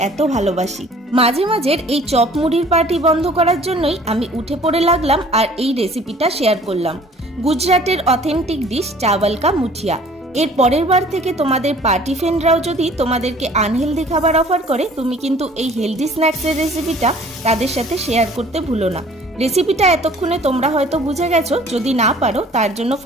এত ভালোবাসি। মাঝে মাঝের এই চপ মুড়ির পার্টি বন্ধ করার জন্যই আমি উঠে পড়ে লাগলাম আর এই রেসিপিটা শেয়ার করলাম। গুজরাটের অথেন্টিক ডিশ চাওয়াল কা মুঠিয়া। এর পরের বার থেকে তোমাদের পার্টি ফ্রেন্ডরাও যদি তোমাদেরকে আনহেলদি খাবার অফার করে, তুমি কিন্তু এই হেলদি স্ন্যাক্সের রেসিপিটা তাদের সাথে শেয়ার করতে ভুলো না। রেসিপিটা এতক্ষণে তোমরা হয়তো বুঝে গেছো, যদি না পারো তার জন্য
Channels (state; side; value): normal; both; correlation 0.52